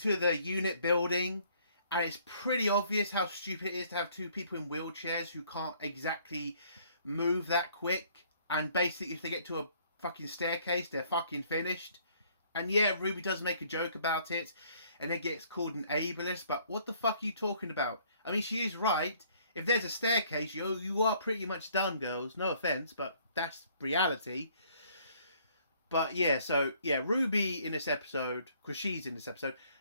the unit building, and it's pretty obvious how stupid it is to have two people in wheelchairs who can't exactly move that quick, and basically if they get to a fucking staircase, they're fucking finished. And Ruby does make a joke about it, and it gets called an ableist, but what the fuck are you talking about? I mean, she is right. If there's a staircase, you are pretty much done, girls. No offence, but that's reality. But Ruby in this episode, because she's in this episode,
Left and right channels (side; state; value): both; inverted; correlation -0.62